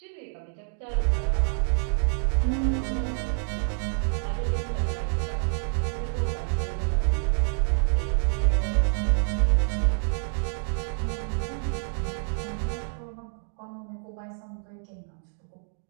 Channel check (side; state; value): left; silent; 60 dB below the other